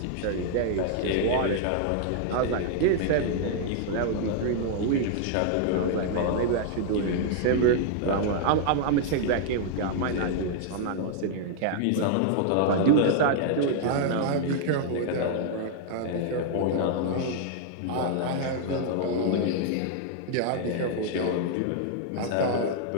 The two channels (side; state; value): both; different; correlation 0.00